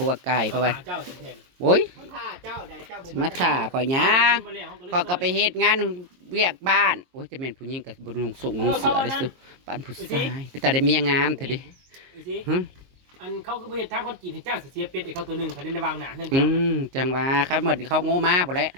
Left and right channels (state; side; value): late; left; 22 ms